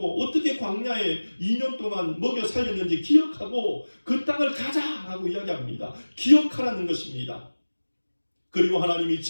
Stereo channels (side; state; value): both; inverted; correlation -1.00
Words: 어떻게 광야에 2년 동안 먹여 살렸는지 기억하고 그 땅을 가자라고 이야기합니다. 기억하라는 것입니다. 그리고 하나님이